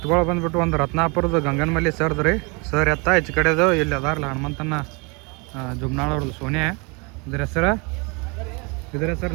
ಬಂದ್ಬಿಟ್ಟು ಒಂದು ರತ್ನಾಪುರದ ಗಂಗನಮಲ್ಲಿ ಸರ್ದು ರೀ. ಸರ್ ಎತ್ತ ಹೆಚ್ಚು ಕಡೆದು ಇಲ್ಲಿ ಅದಾರಲ್ಲ ಹನುಮಂತನ ಜುಮ್ನಾಳ್ ಅವ್ರದ್ದು ಸೋನೆ. ಇದ್ರ ಹೆಸರು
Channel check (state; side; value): quieter; left; 30.2 dB